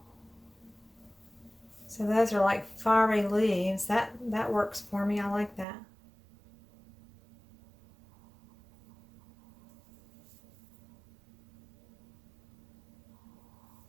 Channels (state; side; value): drops out; left; at 5.7 s